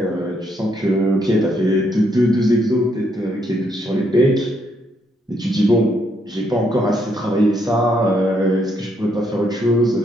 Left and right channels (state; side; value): normal; both; correlation 0.74